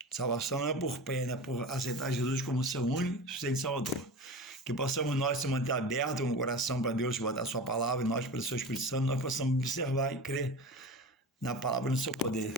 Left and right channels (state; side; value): normal; both; correlation 0.31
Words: Salvação não é por pena, é por aceitar Jesus como seu único e suficiente Salvador. Que possamos nós se manter abertos com o coração para Deus, botar a sua palavra, e nós, pelo seu Espírito Santo, nós possamos observar e crer na palavra e no seu